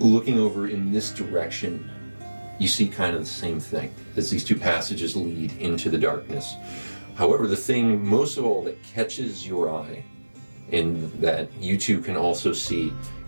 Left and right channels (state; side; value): inverted; both; correlation -1.00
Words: over in this direction, you see kind of the same thing as these two passages lead into the darkness. However, the thing most of all that catches your eye and that you two can also see